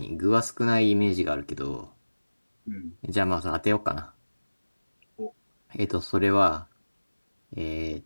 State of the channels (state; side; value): inverted; both; correlation -1.00